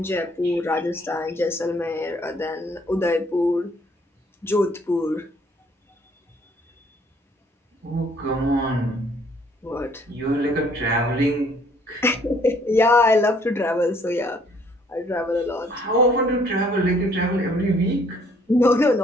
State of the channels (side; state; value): both; normal; correlation 0.62